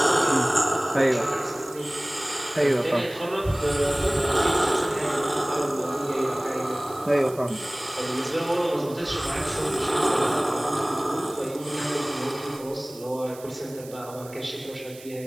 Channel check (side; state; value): right; noise; hiss, 19 dB below the sound